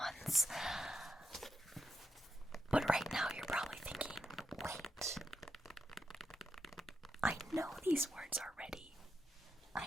But right now you're probably thinking, wait, I know these words already.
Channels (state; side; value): normal; both; correlation 0.84